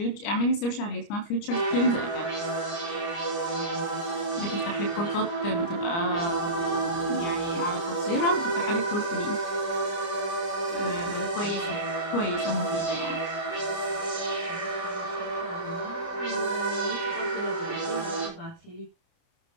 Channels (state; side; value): late; right; 29 ms